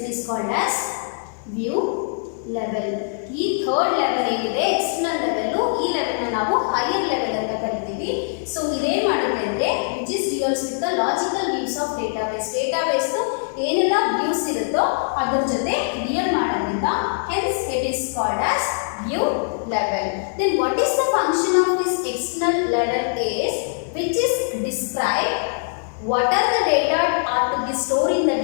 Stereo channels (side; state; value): right; silent; digital silence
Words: View level. ಈ third level ಏನಿದೆ external level, ಈ level ನ ನಾವು higher level ಅಂತ ಕರಿತೀವಿ. So ಇದೇನ್ ಮಾಡುತ್ತೆ ಅಂದ್ರೆ which is deals with the logical views of database. Database ಏನೆಲ್ಲ ವ್ಯೂಸ್ ಇರುತ್ತೋ ಅದ್ರ ಜೊತೆ ಡಿಯಲ್ ಮಾಡೋದ್ರಿಂದ hence it is called as view level. Then what is the function of this external level is which is describe what are the data are to be stored in the